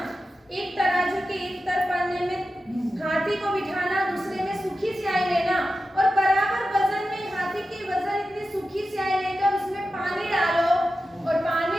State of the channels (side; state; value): both; normal; correlation 0.92